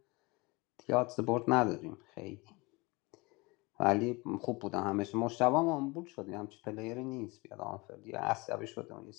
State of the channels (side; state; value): right; quieter; 25.3 dB